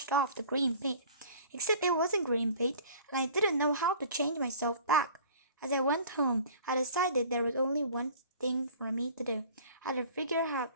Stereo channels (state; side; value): inverted; both; correlation -0.47